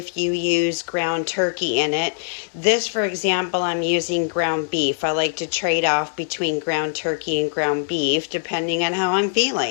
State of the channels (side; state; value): right; silent; digital silence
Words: you use ground turkey in it. This, for example, I'm using ground beef. I like to trade off between ground turkey and ground beef depending on how I'm